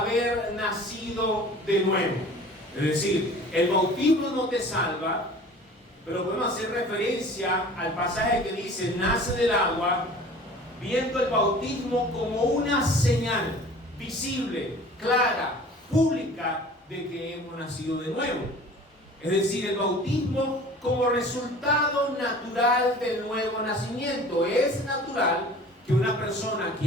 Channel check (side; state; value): both; normal; correlation 0.44